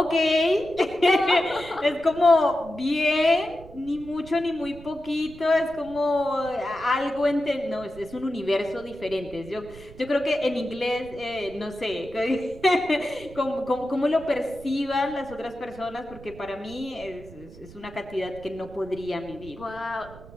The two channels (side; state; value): right; noise; rumble, 18 dB below the sound